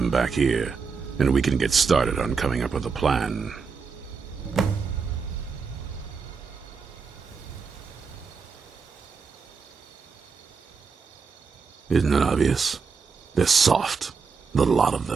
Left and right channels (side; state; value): left; quieter; 5.3 dB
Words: back here, and we can get started on coming up with a plan. Isn't it obvious? They're soft, the lot of